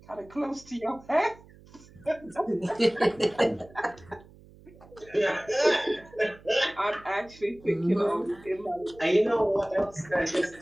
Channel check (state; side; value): noise; right; hum, 23 dB below the sound